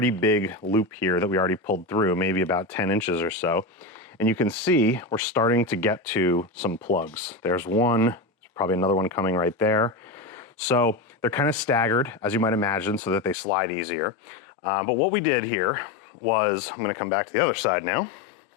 big loop here that we already pulled through, maybe about 10 inches or so. And you can see we're starting to get to some plugs. There's one, there's probably another one coming right there. So they're kind of staggered, as you might imagine, so that they slide easier. But what we did here was, I'm gonna come back to the other side now.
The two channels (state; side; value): drops out; right; at 13.4 s